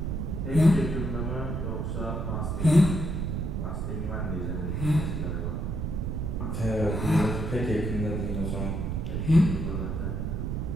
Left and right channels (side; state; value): right; noise; rumble, 1 dB below the sound